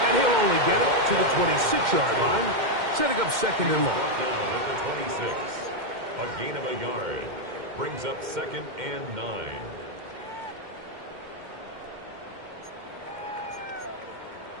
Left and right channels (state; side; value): late; left; 2.1 ms